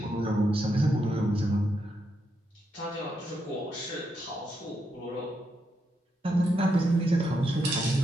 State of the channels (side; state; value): both; normal; correlation 0.81